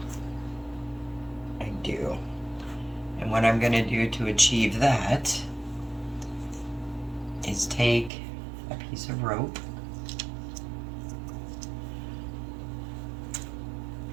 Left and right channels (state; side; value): drops out; left; at 8.1 s